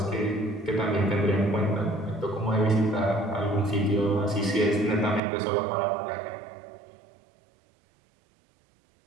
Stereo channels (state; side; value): drops out; left; at 5.2 s